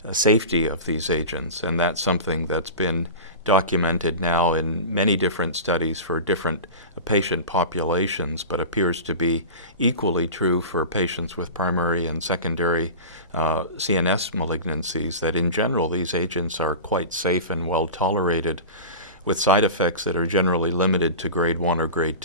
safety of these agents, and that's something that's been documented now in many different studies for different patient populations, but appears to be equally true for patients with primary and secondary CNS malignancies, that in general these agents are quite safe and well tolerated, with side effects that are generally limited to grade 1 or grade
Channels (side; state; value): both; inverted; correlation -0.30